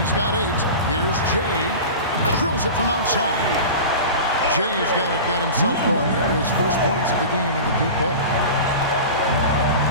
He's got 8. Here's Jay. Drills it from outside. Jay's got himself going there. His first points of the game in the deep ball.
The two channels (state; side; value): inverted; both; correlation -0.32